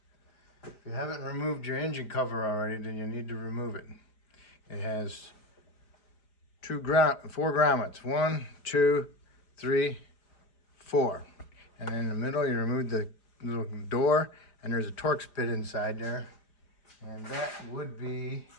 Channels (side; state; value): right; late; 4.9 ms